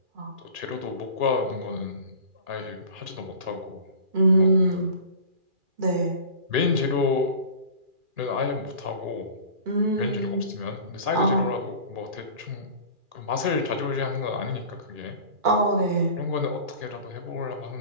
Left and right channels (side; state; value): left; late; 2.4 ms